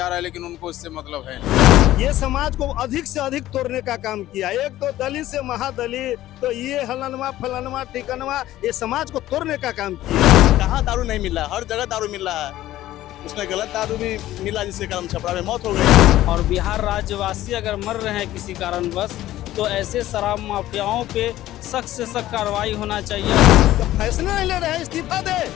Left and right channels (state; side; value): quieter; right; 14.6 dB